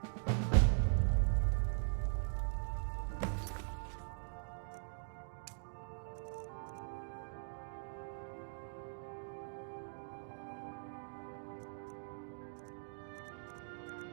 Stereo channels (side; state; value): left; silent; digital silence